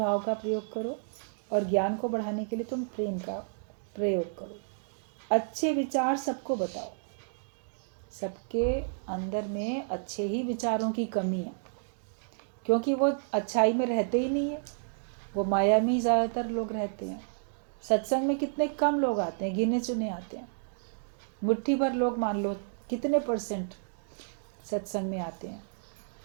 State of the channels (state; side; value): silent; left; digital silence